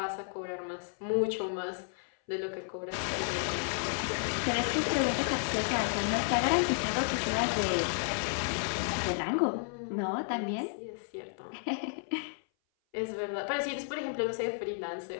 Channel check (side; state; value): right; silent; 56 dB below the other